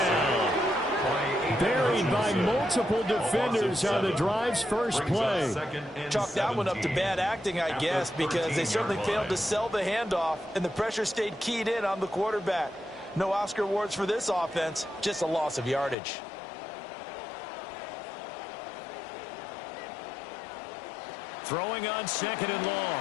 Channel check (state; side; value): drops out; right; at 16.0 s